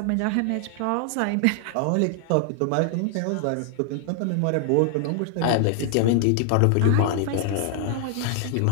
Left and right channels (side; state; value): both; different; correlation 0.00